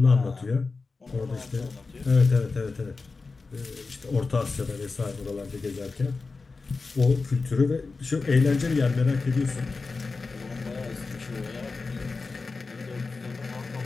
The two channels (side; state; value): right; quieter; 4.1 dB